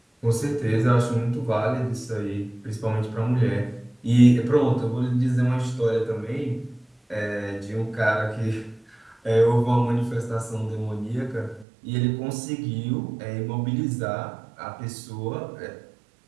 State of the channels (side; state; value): left; drops out; at 11.7 s